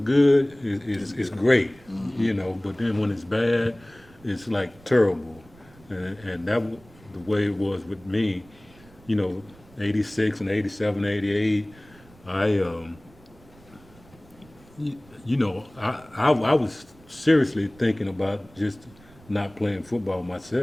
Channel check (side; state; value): right; noise; rumble, 25 dB below the sound